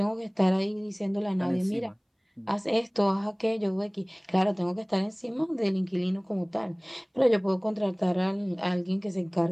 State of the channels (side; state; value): both; identical; correlation 1.00